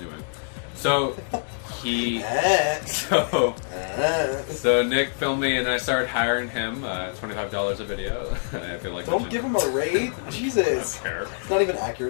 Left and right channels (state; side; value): silent; right; 62 dB below the other